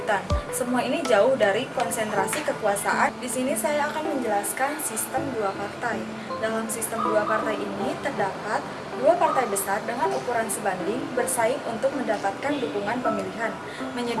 Semua ini jauh dari konsentrasi kekuasaan. Di sini saya akan menjelaskan sistem dua partai. Dalam sistem dua partai ini terdapat dua partai besar dengan ukuran sebanding bersaing untuk mendapatkan dukungan pemilihan,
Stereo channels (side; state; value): both; identical; correlation 1.00